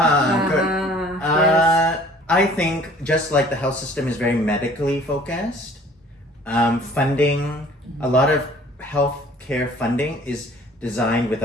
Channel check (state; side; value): normal; both; correlation 0.52